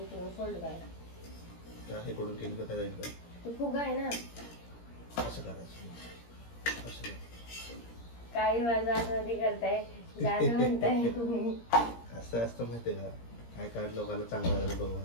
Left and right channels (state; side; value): late; right; 17 ms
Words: इकडून फोल्ड करा. त्या हे कडून केली का काय जाईल का? तो फुगा आहे ना. असं करायचं. असं कर. काय माझं आतमध्ये करताय जाणं म्हणताय. असं असतं माहितीये का? काय काढ लोकांना चांगलं झालं बघा.